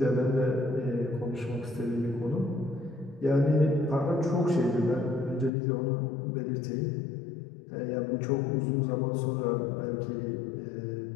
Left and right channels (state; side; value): drops out; right; at 5.5 s